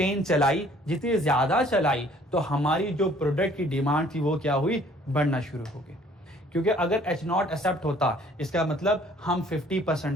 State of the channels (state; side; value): normal; both; correlation 0.57